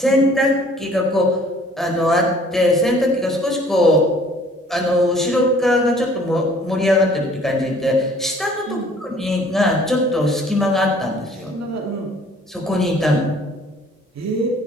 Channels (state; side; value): normal; both; correlation 0.55